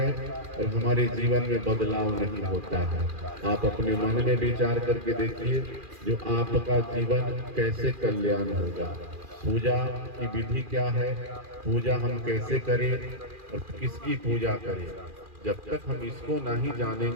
और हमारे जीवन में बदलाव नहीं होता है। आप अपने मन में विचार करके देखिए, जो आपका जीवन कैसे कल्याण होगा। पूजा की विधि क्या है, पूजा हम कैसे करें और किसकी पूजा करें, जब तक हम इसको नहीं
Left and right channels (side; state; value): left; late; 2.4 ms